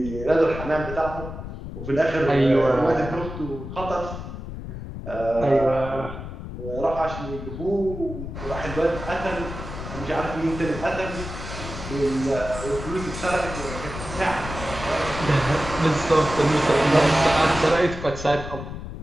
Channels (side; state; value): left; noise; rumble, 9 dB below the sound